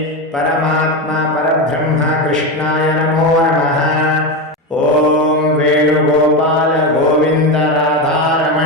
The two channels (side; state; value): both; normal; correlation 0.16